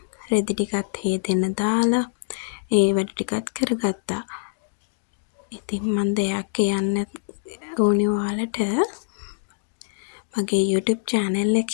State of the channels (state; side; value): silent; right; digital silence